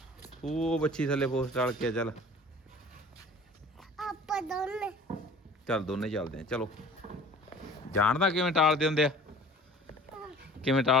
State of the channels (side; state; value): both; normal; correlation 0.46